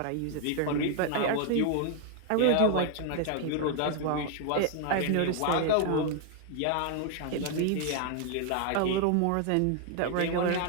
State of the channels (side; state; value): both; different; correlation 0.00